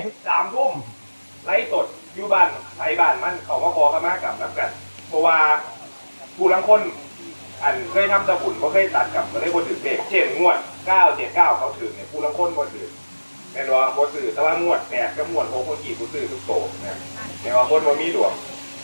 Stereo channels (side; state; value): both; inverted; correlation -1.00